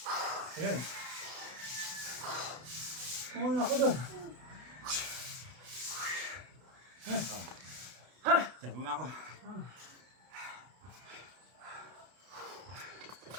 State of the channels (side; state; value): left; late; 32 ms